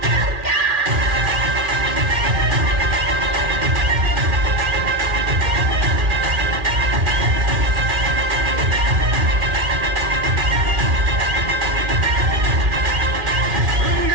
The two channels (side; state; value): left; late; 2.4 ms